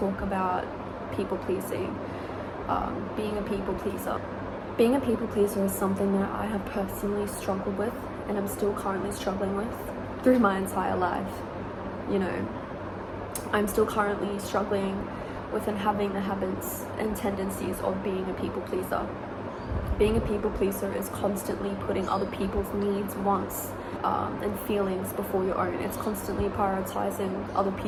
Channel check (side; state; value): both; identical; correlation 1.00